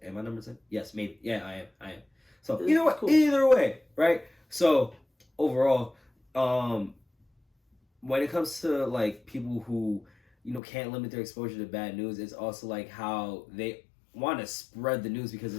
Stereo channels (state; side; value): drops out; right; at 10.6 s